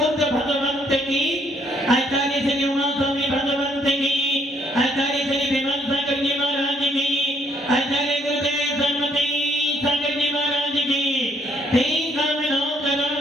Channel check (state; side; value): normal; both; correlation 0.68